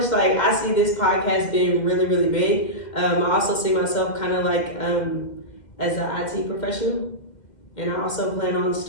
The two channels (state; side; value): late; right; 2.1 ms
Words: like I see this podcast being really, really big. I also see myself kind of like as an IT professional. And I also plan on